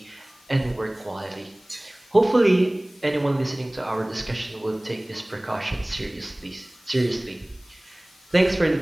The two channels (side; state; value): left; noise; hiss, 28 dB below the sound